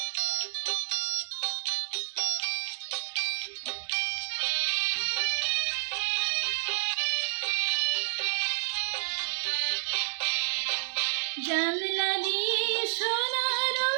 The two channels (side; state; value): left; silent; 56 dB below the other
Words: জানলা দিয়ে সোনা